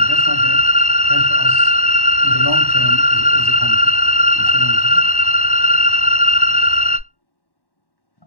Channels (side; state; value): right; late; 1.1 ms